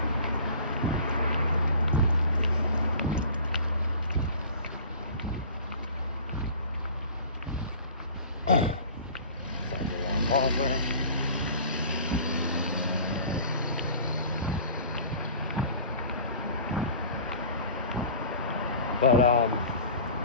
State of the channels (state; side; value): inverted; both; correlation -0.43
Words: Pause there. But